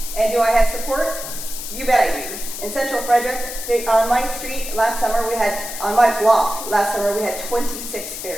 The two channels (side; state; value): left; noise; hiss, 8 dB below the sound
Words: And do I have support? You bet I do. In Central Frederick, on my street last summer, on my block last summer, we had 26